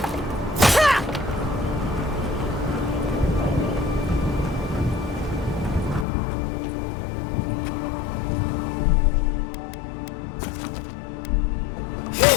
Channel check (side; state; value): right; drops out; at 6.1 s